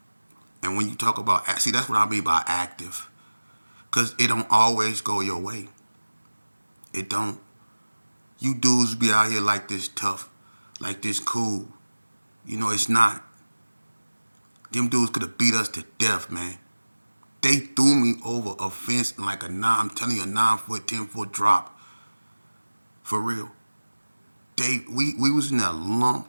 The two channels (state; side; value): inverted; both; correlation -1.00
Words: And when you talk about, see, that's what I mean by active. Because it don't always go your way. It don't. You dudes be out here like this tough, like this cool. You know, it's not. Them dudes could have beat us to death, man. They threw me over a fence like I'm telling you, a 9-foot, 10-foot drop. For real. We was in there